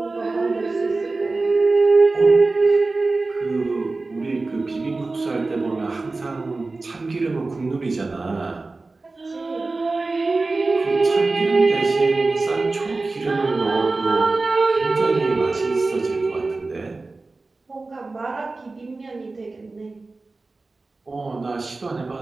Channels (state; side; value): quieter; left; 3.5 dB